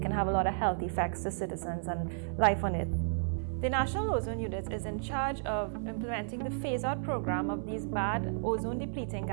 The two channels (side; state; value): left; silent; 56 dB below the other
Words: can have a lot of health effects to citizens and life on Earth. The National Ozone Unit is in charge of implementing the phase-out program of these bad ozone-depleting